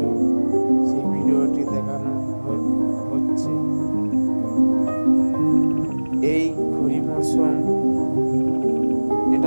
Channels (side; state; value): both; inverted; correlation -1.00